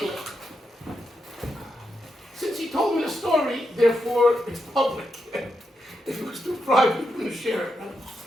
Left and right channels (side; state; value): both; normal; correlation 0.85